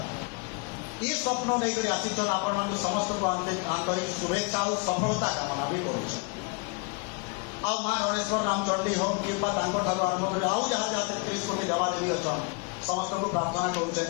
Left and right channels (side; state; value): right; quieter; 29.9 dB